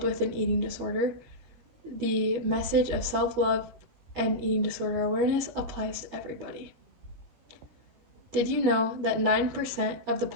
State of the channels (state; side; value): late; left; 13 ms